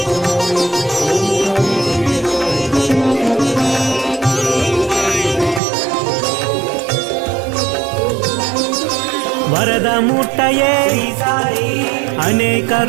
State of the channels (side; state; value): left; drops out; at 5.6 s